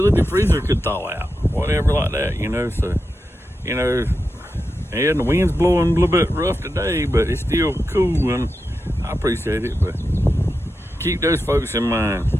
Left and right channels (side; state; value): both; normal; correlation 0.89